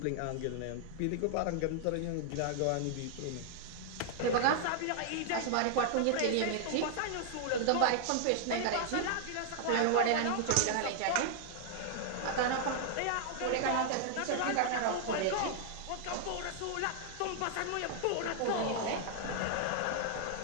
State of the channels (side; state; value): both; different; correlation -0.01